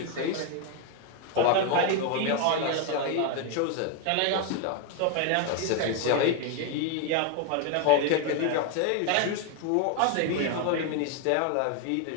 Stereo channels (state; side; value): different; both; correlation 0.01